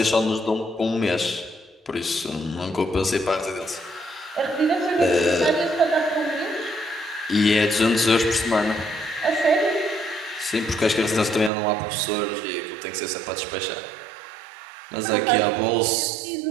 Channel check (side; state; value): left; drops out; at 11.5 s